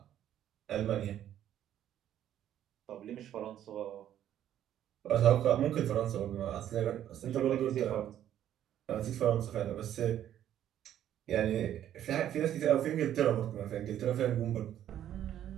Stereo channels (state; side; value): quieter; left; 11.1 dB